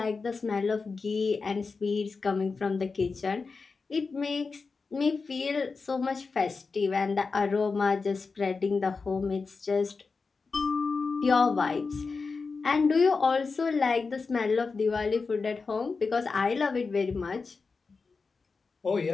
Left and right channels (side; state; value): right; quieter; 4.5 dB